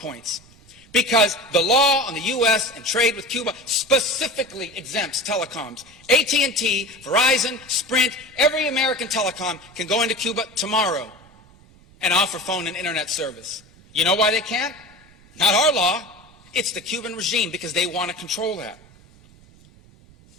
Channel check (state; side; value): noise; right; rumble, 26 dB below the sound